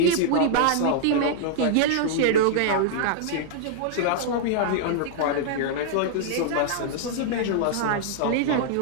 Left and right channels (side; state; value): both; different; correlation -0.01